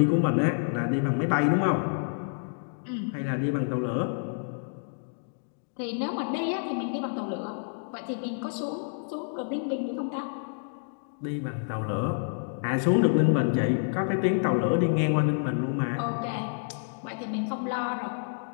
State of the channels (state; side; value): silent; right; digital silence